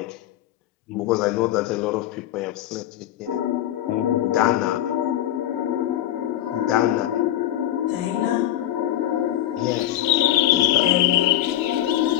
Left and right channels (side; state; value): right; quieter; 12.9 dB